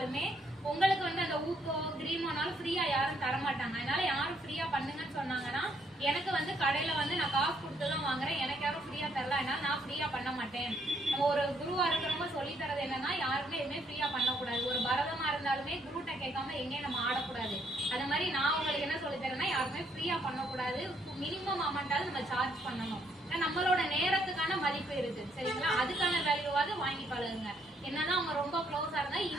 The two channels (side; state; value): both; normal; correlation 0.70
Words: உங்களுக்கு வந்து அந்த ஊக்கோ கிரீமோனாலும் ஃப்ரீயா யாரும் தரமாட்டாங்க. அதனால யாரும் ஃப்ரீயா பண்ணுங்கன்னு சொன்னாங்கன்னா எனக்கு வந்து கடையில வந்து நான் காசு கொடுத்துதான் வாங்குறேன், எனக்கு யாரும் ஃப்ரீயா தரல, அதனால நான் ஃப்ரீயா பண்ண மாட்டேன். நம்ம ஒரு குருவா இருக்கிறவங்க சொல்லி தரது என்னன்னா யாருமே எதுவுமே ஃப்ரீயா பண்ணக்கூடாது. ஒரு பரதமா இருந்தாலுமே குருட்ட கேட்காம எங்கேயும் நம்ம ஆடக்கூடாது. அது மாதிரி நான் உங்களுக்கு என்ன சொல்லி தரேன்னா யாருமே ஃப்ரீயா பண்ணக்கூடாது. மினிமம் அமௌண்டாவது நம்ம சார்ஜ் பண்ணணும். நம்மளோட நேரத்துக்கான மதிப்பு இருக்கு. சரிங்களா? அதுக்கான வேல்யூவாவது வாங்கி பழகுங்க. என்னன்னா அவங்க ரொம்ப க்ளோஸா இருந்தா